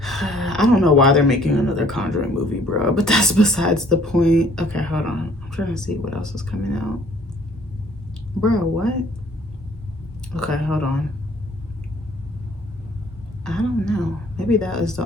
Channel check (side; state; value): both; normal; correlation 0.58